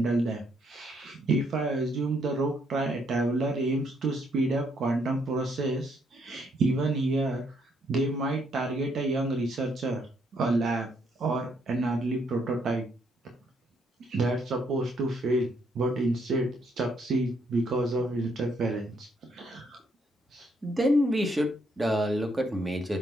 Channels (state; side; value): normal; both; correlation 0.72